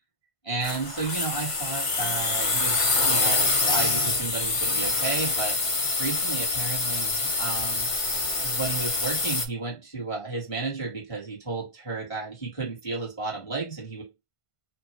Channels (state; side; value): late; right; 1.5 ms